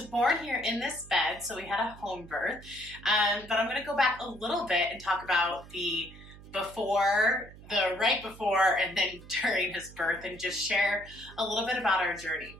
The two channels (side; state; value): right; noise; hum, 18 dB below the sound